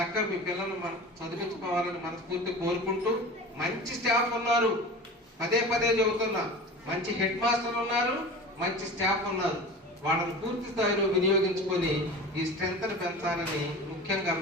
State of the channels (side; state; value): both; normal; correlation 0.35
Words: మీ పిల్లలు చదివించుకోవాలని మనస్ఫూర్తి కోరుకుంటూ, మంచి స్టాఫ్ ఉన్నారు, పదే చెబుతున్నా, మంచి హెడ్ మాస్టర్ ఉన్నారు, మంచి స్టాఫ్ ఉన్నారు. వాళ్ళని పూర్తి స్థాయిలో వినియోగించుకొని ఈ స్ట్రెంత్ ని పెంచాలని ముఖ్యంగా